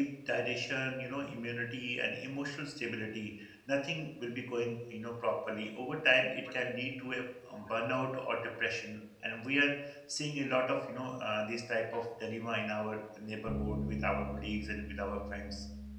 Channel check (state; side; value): identical; both; correlation 1.00